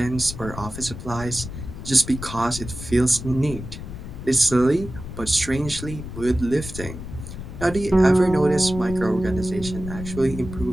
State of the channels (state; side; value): noise; left; rumble, 10 dB below the sound